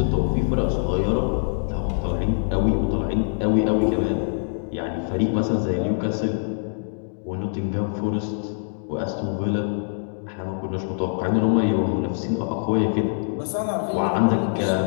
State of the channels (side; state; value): right; silent; digital silence